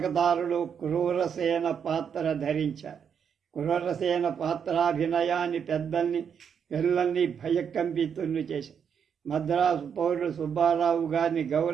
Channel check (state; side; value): quieter; left; 7.4 dB